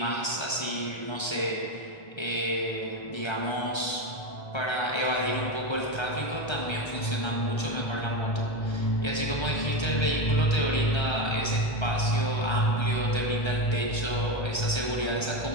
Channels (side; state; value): right; late; 1.3 ms